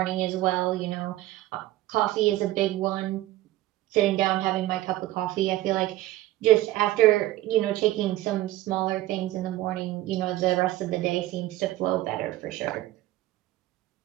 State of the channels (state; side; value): quieter; left; 15.9 dB